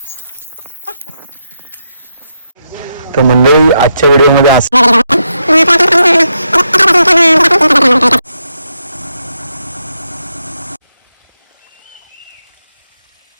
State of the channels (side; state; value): both; inverted; correlation -0.82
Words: मंडळी आजच्या व्हिडिओमध्ये असं